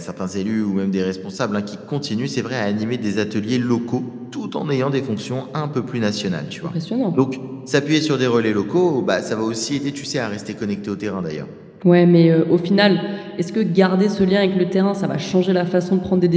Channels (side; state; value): both; identical; correlation 1.00